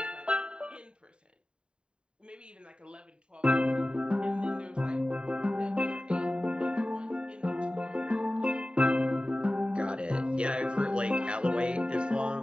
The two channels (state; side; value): late; left; 0.052 ms